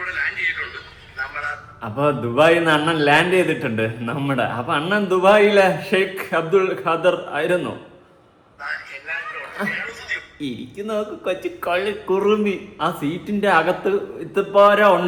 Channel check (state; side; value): identical; both; correlation 1.00